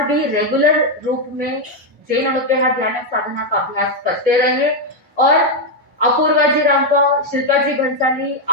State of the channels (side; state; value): both; normal; correlation 0.02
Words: भी रेगुलर रूप में जैन अनुदेहा ध्यान साधना का अभ्यास करते रहे और अपूर्वा जी रांका, शिल्पा जी भंसाली